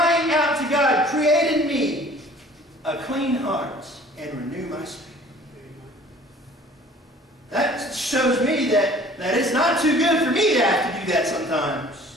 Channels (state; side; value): normal; both; correlation 0.51